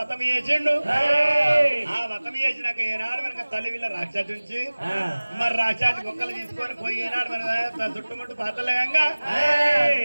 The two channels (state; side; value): inverted; both; correlation -1.00